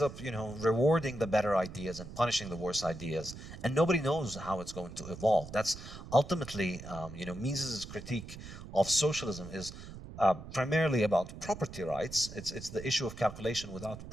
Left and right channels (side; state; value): right; noise; rumble, 13 dB below the sound